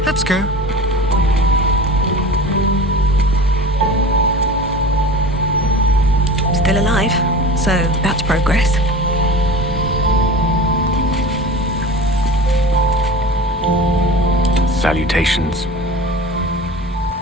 Let's go. Still alive, so that's progress. Salutations.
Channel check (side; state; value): both; normal; correlation 0.36